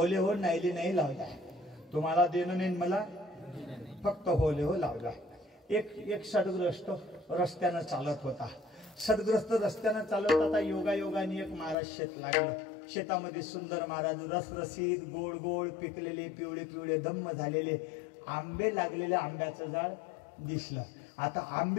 हो नाहीली नाही लावला, तुम्हाला देणं नाही मला, फक्त होले हो लावला. एक सदग्रस्त रस्त्यानं चालत होता. सदग्रस्त रस्त्यानं चालत होता. योगायोगाने एक महाराज शेत लागलं. शेतामध्ये सुंदर महाराज रसरशीत गोड गोड पिकलेले पिवळे पिवळे धम्म झालेले आंबे लागलेले आंब्याचं झाड दिसलं. आता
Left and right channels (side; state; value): right; drops out; at 11.8 s